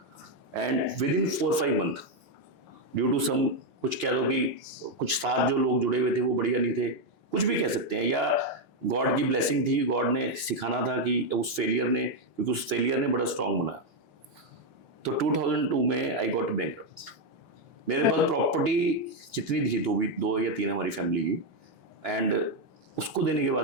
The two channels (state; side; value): normal; both; correlation 0.03